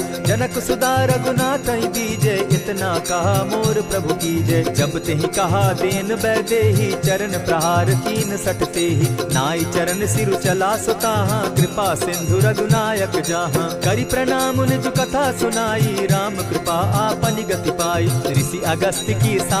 जनक सुदा रघुनाथ दीजे, इतना कहा मोर प्रभु कीजय। जब तेहि कहा देन बैदेही, चरण प्रहार कीन सटते ही। नाई चरण सिरु चला सुताहा, कृपा सिंधु रघुनायक जाहा। करि प्रणाम निज कथा सुनाई, राम कृपा आपनि गति पाई। ऋषि अगस्त की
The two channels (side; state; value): right; noise; hum, 28 dB below the sound